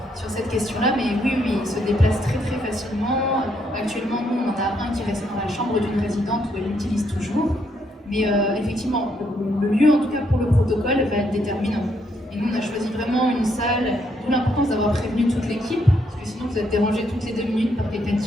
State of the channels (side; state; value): both; normal; correlation 0.74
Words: sur cette question-là, mais oui, il se déplace très très facilement. Actuellement, nous, on en a un qui reste dans la chambre d'une résidente où elle l'utilise toujours. Mais effectivement, le lieu, en tout cas pour le protocole, va être déterminant. Et nous, on a choisi vraiment une salle, d'où l'importance d'avoir prévenu toute l'équipe, parce que sinon vous êtes dérangés toutes les 2 minutes par quelqu'un